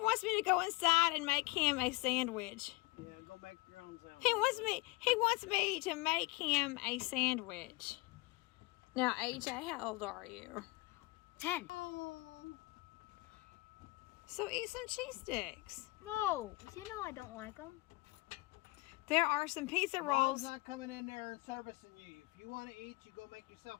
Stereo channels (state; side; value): quieter; right; 22.7 dB